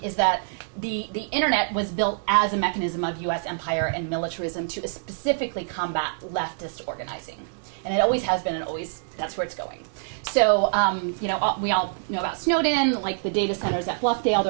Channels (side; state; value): left; silent; digital silence